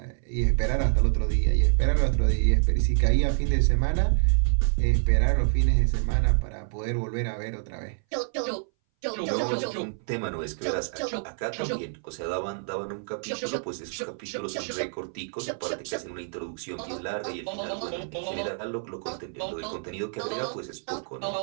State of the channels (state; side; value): silent; left; 59 dB below the other